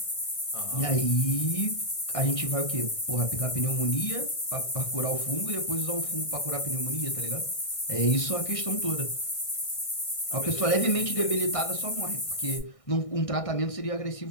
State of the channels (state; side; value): late; right; 1.6 ms